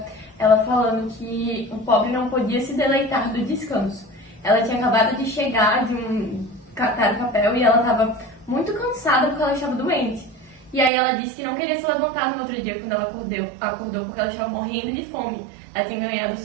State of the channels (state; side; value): drops out; left; at 10.9 s